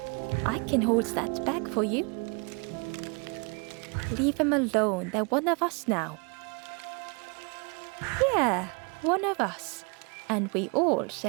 I can hold that bag for you. Leave them alone, they're one of us now. Yeah, one of us. And we all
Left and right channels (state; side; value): quieter; left; 33.1 dB